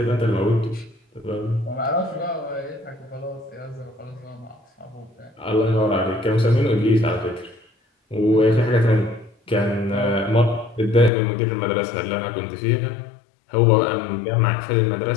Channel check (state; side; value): drops out; right; at 11.1 s